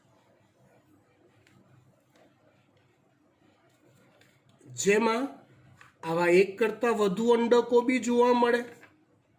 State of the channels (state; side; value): identical; both; correlation 1.00